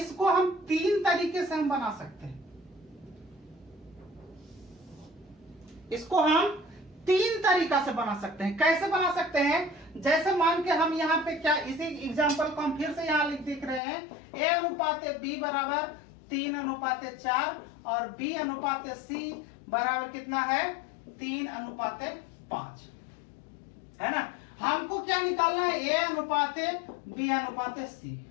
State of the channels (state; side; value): drops out; right; at 13.8 s